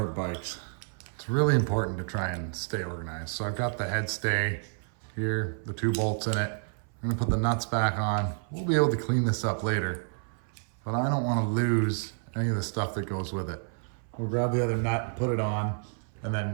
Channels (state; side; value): silent; left; 57 dB below the other